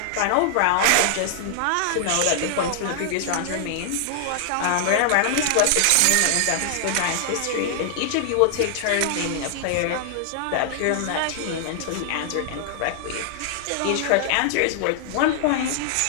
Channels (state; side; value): different; both; correlation -0.01